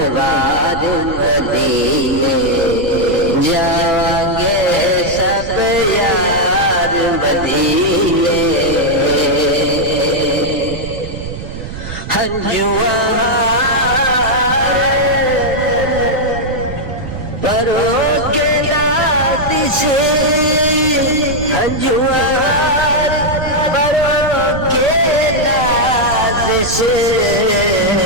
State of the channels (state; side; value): noise; right; rumble, 10 dB below the sound